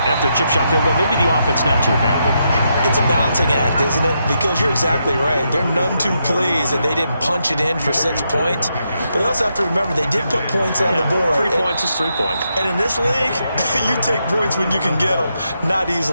after a chip shot field goal, maybe the offense not too happy. It's a balancing act, isn't it? Because you're exactly right. They're none too pleased that they didn't punch it in for 6 points. But they also have to remember they did put points on the board. 3 points is 3 points. And in this league, you take points when you can get them. Not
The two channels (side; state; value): both; inverted; correlation -0.81